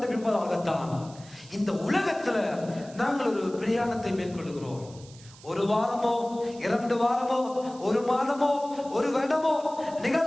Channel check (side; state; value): right; noise; hiss, 22 dB below the sound